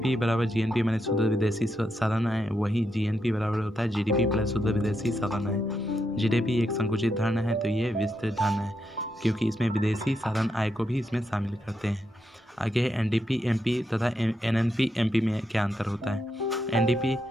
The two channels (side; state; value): both; normal; correlation 0.82